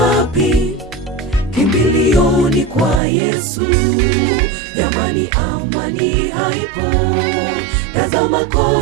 Kimbilio ni kwa Yesu. Jamani, amani haipo, tazama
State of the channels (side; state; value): left; drops out; at 3.0 s